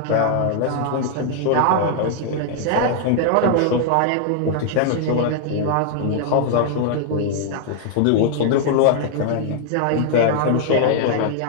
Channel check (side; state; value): both; different; correlation -0.01